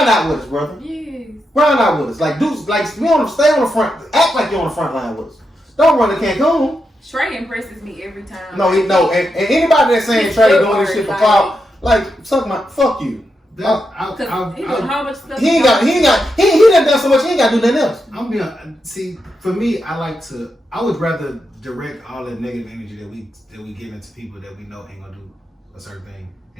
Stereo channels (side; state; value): both; normal; correlation 0.85